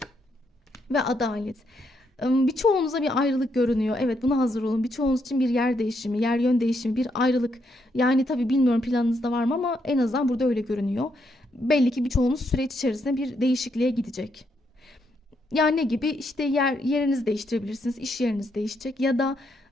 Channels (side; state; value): both; normal; correlation 0.77